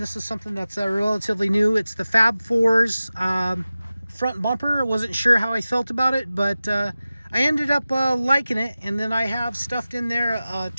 this is something that's relatively new. It's the Fab 4's front bumper. I wasn't sure how I felt about it, but I ended up liking it. And then I have stuffed in there a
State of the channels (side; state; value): both; inverted; correlation -0.96